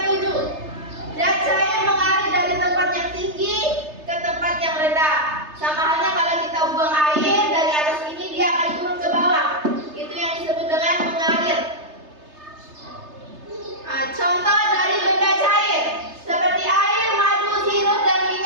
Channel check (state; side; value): late; left; 3.3 ms